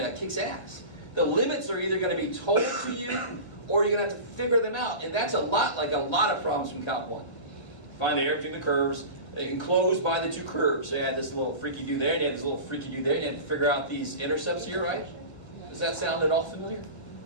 It kicks ass. The limits are either going to be told to you, or you're going to have to figure them out. And that's a lot like a lot of problems from Calc 1. Find the area between the curves, enclosed by the two curves. So you had this little freaky-do there, and you had this little freaky-do there, and you had to figure out these intercepts here, right? Does that sound at all familiar?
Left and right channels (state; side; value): late; right; 1.7 ms